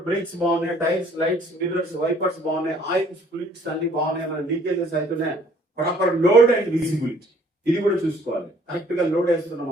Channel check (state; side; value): normal; both; correlation 0.59